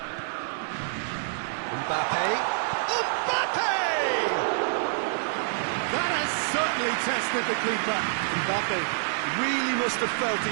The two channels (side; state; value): left; silent; digital silence